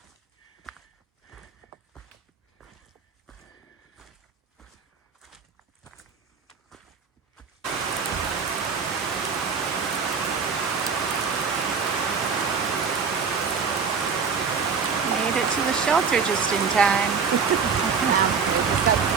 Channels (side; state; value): left; quieter; 5.7 dB